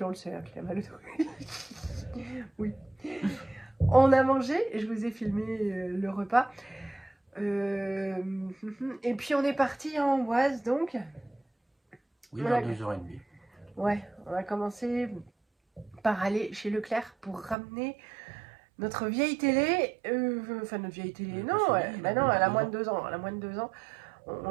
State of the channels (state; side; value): drops out; left; at 17.6 s